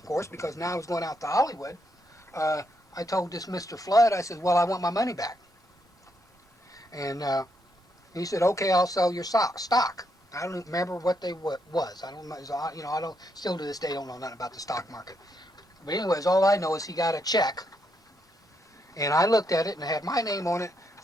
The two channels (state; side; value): normal; both; correlation 0.78